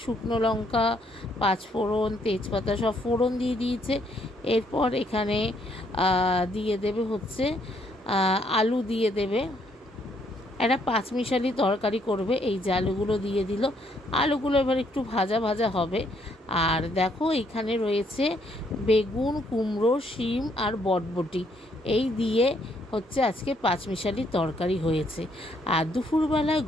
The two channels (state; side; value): normal; both; correlation 0.70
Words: শুকনো লঙ্কা, পাঁচফোড়ন, তেজপাতা সব ফোড়ন দিয়ে দিয়েছে। এরপর এখানে দিয়ে দেবে হচ্ছে আলু দিয়ে দেবে। একটা পাঁচমিশালি তরকারি করবে, এই যে আলুগুলো দিয়ে দিল। আলুগুলো এবার একটু ভাজা ভাজা হবে। আর দেখো এখানে রয়েছে বেগুন, কুমড়ো, শিম আর বটবটি, এই দিয়ে হচ্ছে আজকে পাঁচমিশালি তরকারি হয়েছে। আর দুপুরবেলায়